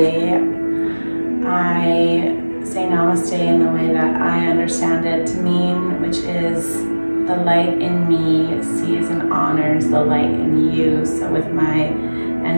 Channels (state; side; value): inverted; both; correlation -1.00